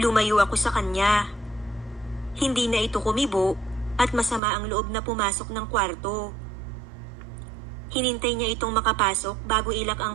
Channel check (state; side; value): drops out; left; at 4.4 s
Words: ako sa kanya. Hindi na ito kumibo at masama ang loob na pumasok ng kwarto. Hinintay niya itong makapasok bago ilak